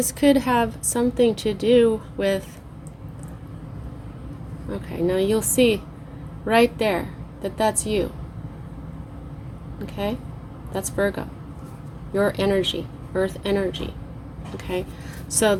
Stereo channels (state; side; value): identical; both; correlation 1.00